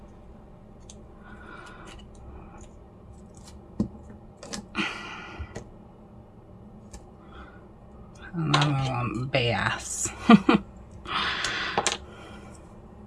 And then we want B-S.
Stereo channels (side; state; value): both; identical; correlation 1.00